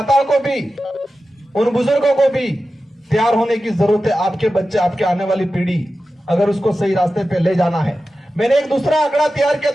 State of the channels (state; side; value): normal; both; correlation 0.93